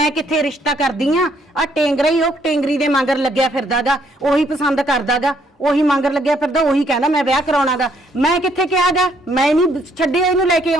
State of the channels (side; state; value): both; normal; correlation 0.68